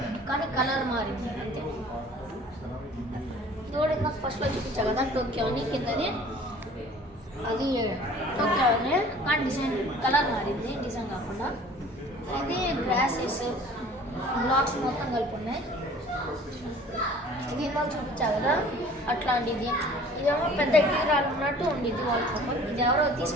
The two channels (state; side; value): normal; both; correlation 0.49